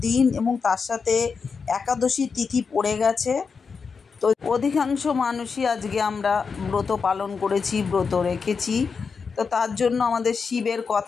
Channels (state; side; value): quieter; right; 5.4 dB